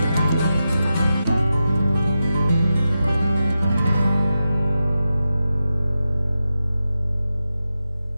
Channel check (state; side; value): inverted; both; correlation -0.91